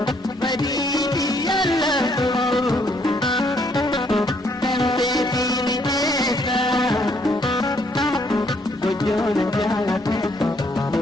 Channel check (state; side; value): normal; both; correlation 0.69